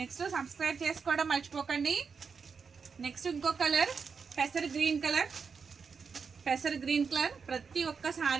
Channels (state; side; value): quieter; left; 5.6 dB